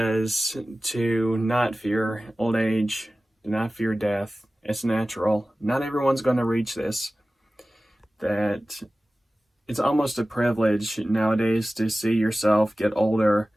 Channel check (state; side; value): normal; both; correlation 0.96